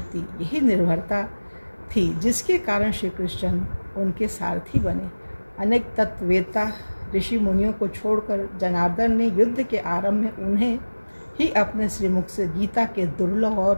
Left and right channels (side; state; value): both; inverted; correlation -1.00